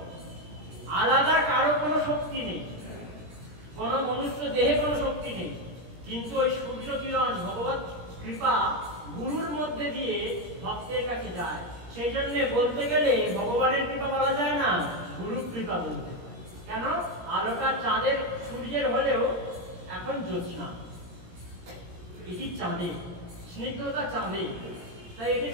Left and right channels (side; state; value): left; late; 17 ms